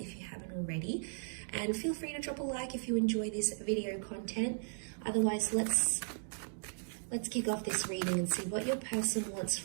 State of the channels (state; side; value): silent; left; digital silence